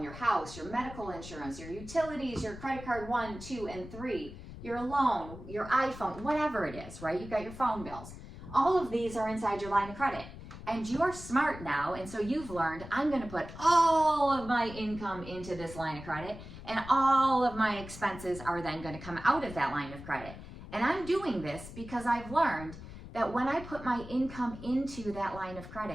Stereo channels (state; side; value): noise; left; rumble, 13 dB below the sound